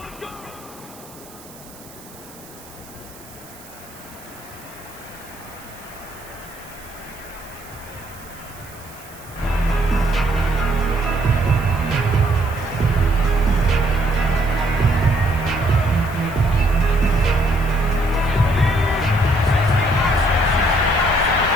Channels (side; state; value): right; noise; hiss, 21 dB below the sound